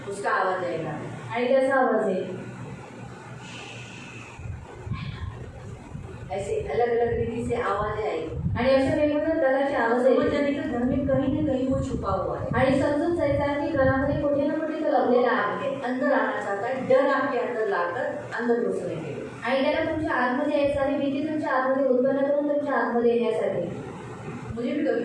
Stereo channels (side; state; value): both; identical; correlation 1.00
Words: उसका आवाज आएगा। आणि त्याचा आवाज येईल. ऐसे अलग अलग रीति से आवाजें आएगी, आणि अशा वेगवेगळ्या प्रकारचे आवाज समझ येईल. जाने का घर में कहीं ना कहीं वो छुपा हुआ है, आणि समजून जायचं आहे की घरामध्ये कुठे ना कुठे तो लपलेला आहे. आपके अंदर आना चाहता है, डर आपके अंदर लाकर अंदर घुसने के लिए। आणि त्याला तुमच्या आतमध्ये यायचं आणि भीती तुमच्या आतमध्ये उत्पन्न करून तुमच्या आतमध्ये येण्यासाठी. मुझे भी कभी